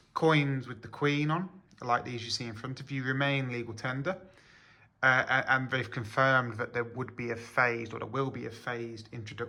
coins with the Queen on, like these you see in front of you, remain legal tender. And they've confirmed that there will be a phased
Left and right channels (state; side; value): identical; both; correlation 1.00